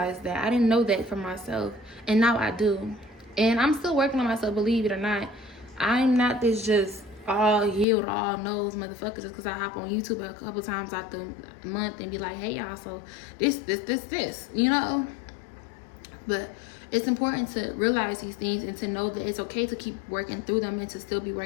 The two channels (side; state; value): right; drops out; at 7.9 s